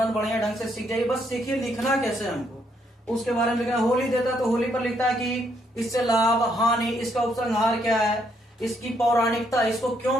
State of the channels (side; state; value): both; normal; correlation 0.73